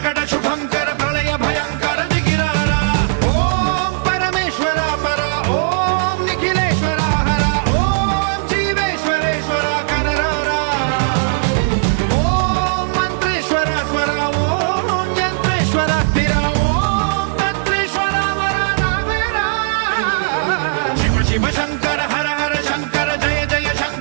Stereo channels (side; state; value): left; silent; 68 dB below the other